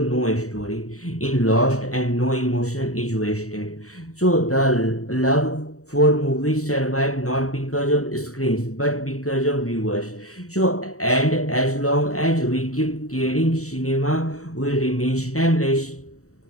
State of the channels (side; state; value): right; late; 0.65 ms